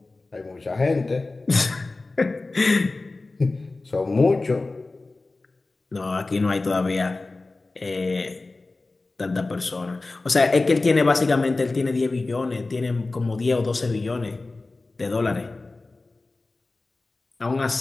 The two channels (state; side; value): quieter; right; 3.3 dB